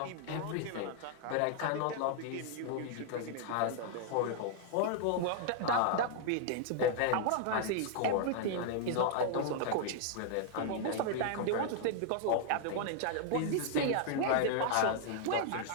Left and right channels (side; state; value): both; different; correlation -0.01